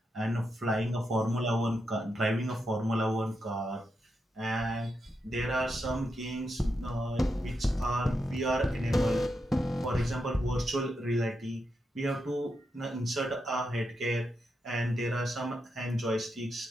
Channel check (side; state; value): both; normal; correlation 0.85